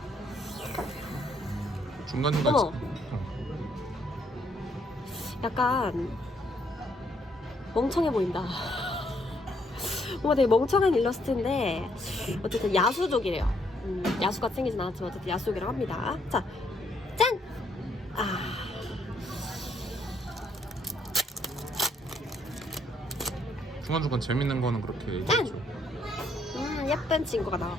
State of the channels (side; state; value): both; normal; correlation 0.71